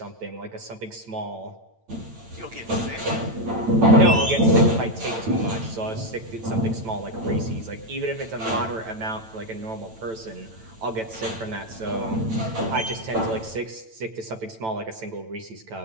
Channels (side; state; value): left; late; 9.0 ms